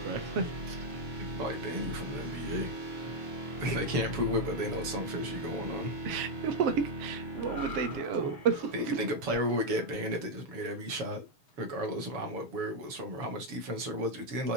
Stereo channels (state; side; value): late; left; 7.0 ms